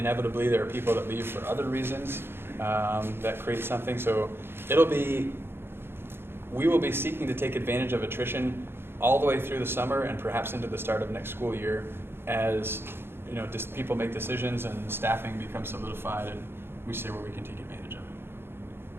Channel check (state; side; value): late; left; 0.11 ms